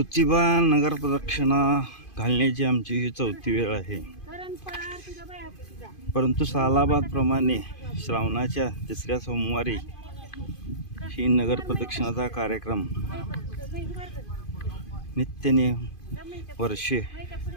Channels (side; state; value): right; late; 2.5 ms